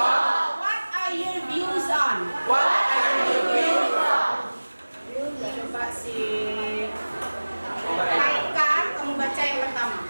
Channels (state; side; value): inverted; both; correlation -1.00